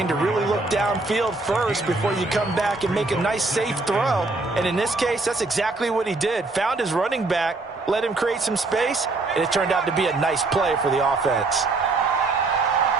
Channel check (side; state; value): left; quieter; 3.4 dB